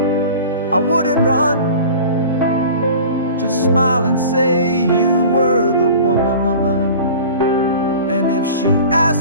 I wouldn't run, just smile and say you were the one. And if she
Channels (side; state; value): both; inverted; correlation -0.39